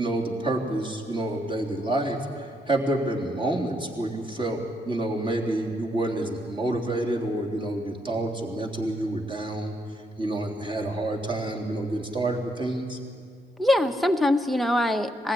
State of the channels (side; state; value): both; normal; correlation 0.76